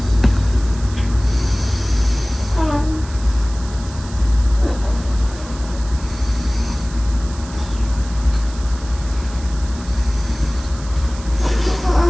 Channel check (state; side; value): noise; right; hiss, 18 dB below the sound